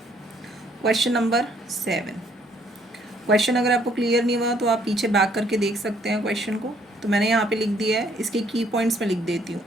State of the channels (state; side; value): normal; both; correlation 0.65